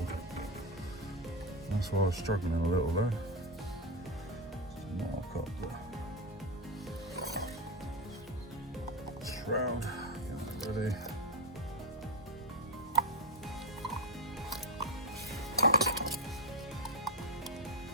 That's why I was struggling a little there. Just mark up the shroud, get that ready.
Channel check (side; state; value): both; normal; correlation 0.09